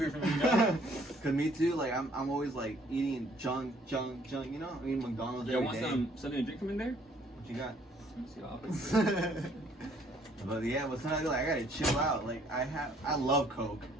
for me. You know? Cause me too, like I'm always like eating junk, you know? I eat McDonald's You every want day. something to drink from in there? What you got? Let me see. But yeah, but sometimes like I gotta chill out. Like I love Coke.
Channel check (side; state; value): both; normal; correlation 0.62